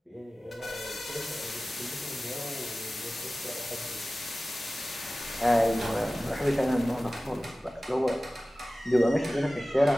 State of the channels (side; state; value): both; normal; correlation 0.97